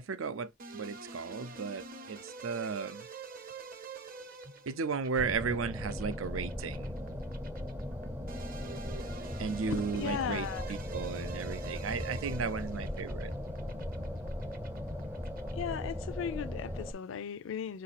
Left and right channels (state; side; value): normal; both; correlation 0.31